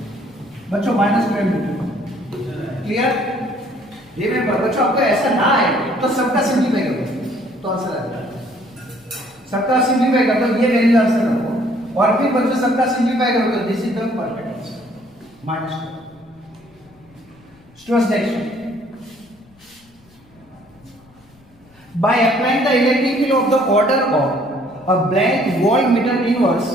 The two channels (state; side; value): noise; left; rumble, 29 dB below the sound